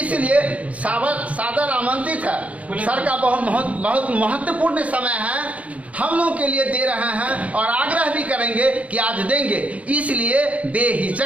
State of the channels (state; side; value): late; left; 0.068 ms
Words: सादर आमंत्रित है। सर का बहुत महत्वपूर्ण समय है, हम लोग के लिए दे रहे हैं और आग्रह भी करेंगे कि आज देंगे। इसलिए